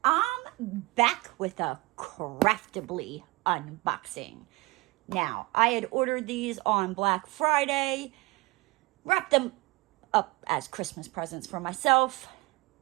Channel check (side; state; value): left; quieter; 23.1 dB